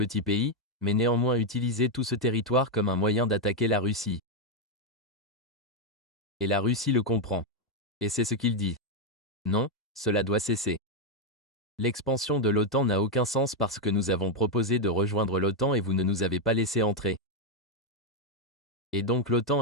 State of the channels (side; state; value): both; normal; correlation 0.02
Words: pays, mais néanmoins utiliser tout ce territoire comme un moyen d'attaquer la Russie. Et la Russie le comprend. Et c'est ce qu'il dit. Non, cela doit cesser. L'expansion de l'OTAN n'a aucun sens parce que nous avons proposé de rejoindre l'OTAN et vous ne nous avez pas laissé entrer. Et donc